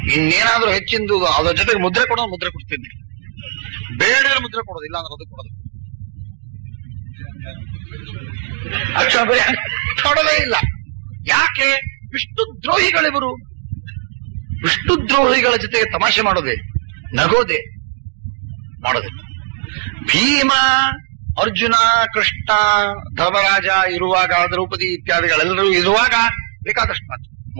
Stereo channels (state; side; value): silent; left; digital silence